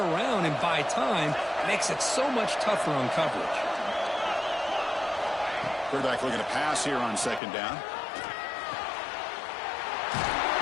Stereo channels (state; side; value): drops out; right; at 7.4 s